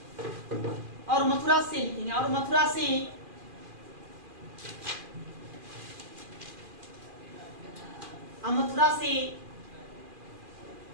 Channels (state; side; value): late; left; 2.4 ms